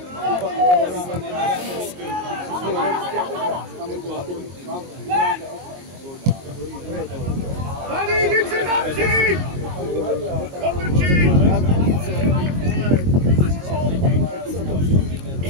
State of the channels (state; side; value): late; left; 22 ms